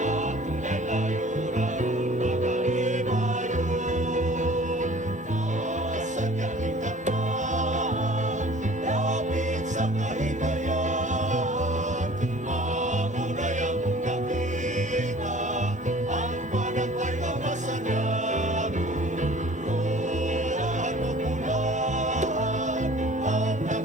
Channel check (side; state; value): both; normal; correlation 0.48